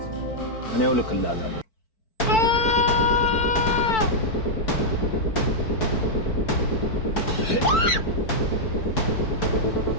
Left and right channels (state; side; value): late; right; 4.5 ms